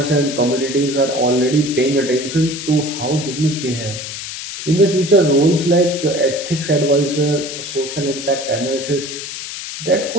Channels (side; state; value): left; noise; hiss, 8 dB below the sound